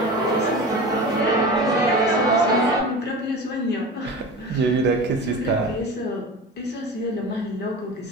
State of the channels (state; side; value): normal; both; correlation 0.31